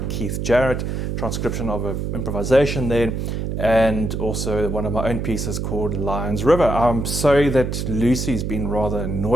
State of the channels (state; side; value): noise; right; hum, 2 dB below the sound